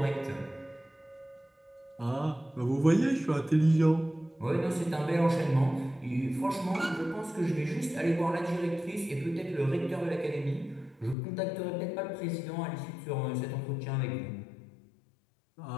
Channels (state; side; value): drops out; right; at 11.2 s